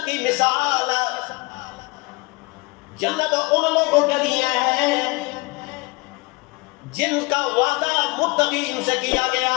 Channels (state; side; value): quieter; right; 26.1 dB